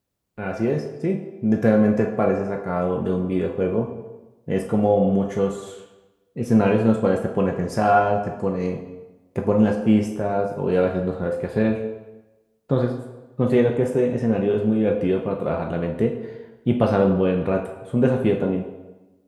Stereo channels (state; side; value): identical; both; correlation 1.00